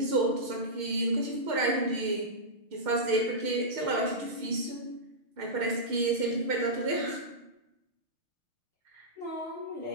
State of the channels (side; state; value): left; late; 6.5 ms